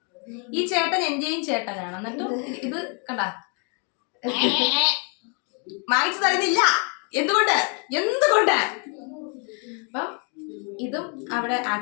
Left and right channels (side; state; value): right; quieter; 37.6 dB